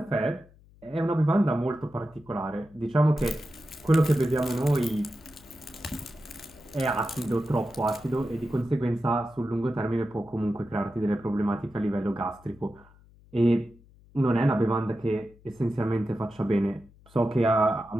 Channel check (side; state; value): left; noise; hum, 26 dB below the sound